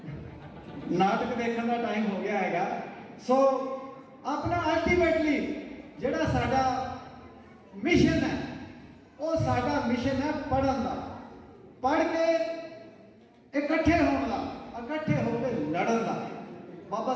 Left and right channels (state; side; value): identical; both; correlation 1.00